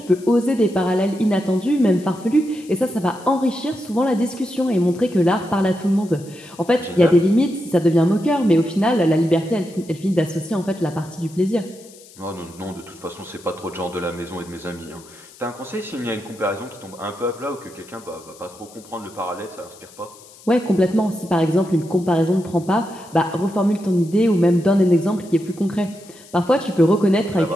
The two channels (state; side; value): noise; left; hiss, 22 dB below the sound